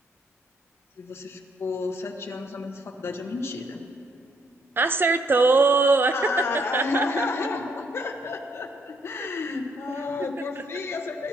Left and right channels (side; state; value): both; normal; correlation 0.71